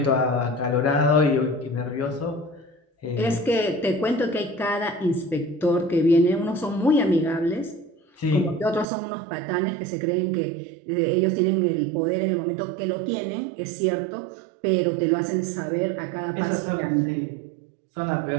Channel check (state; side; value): drops out; left; at 8.8 s